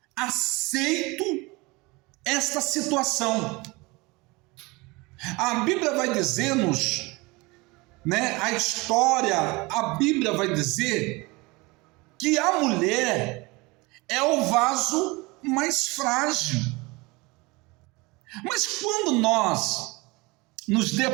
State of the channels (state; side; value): quieter; left; 24.4 dB